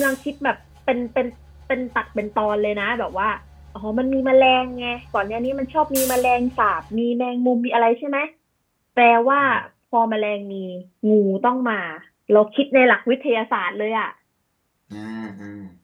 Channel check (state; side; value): identical; both; correlation 1.00